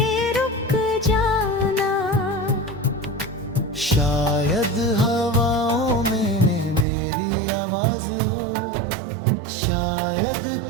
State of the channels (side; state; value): left; drops out; at 6.9 s